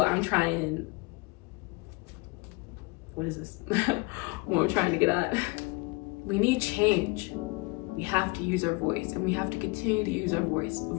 I'm trying, what is this? What I'm trying to get at. We need change. We have to use our voice, and we have to continue to use our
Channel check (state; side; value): quieter; right; 25.9 dB